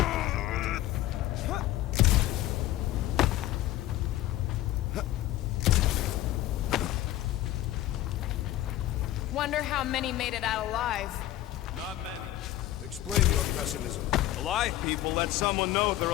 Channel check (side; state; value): right; quieter; 14.6 dB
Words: Wonder how many made it out alive. Not many. Explain your pessimism. Alive people let someone know they're